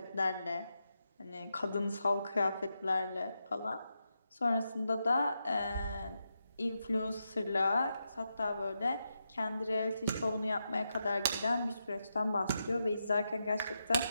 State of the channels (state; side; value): inverted; both; correlation -0.85